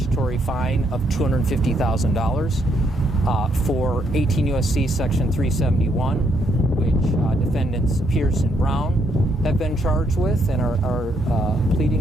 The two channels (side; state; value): both; normal; correlation 0.74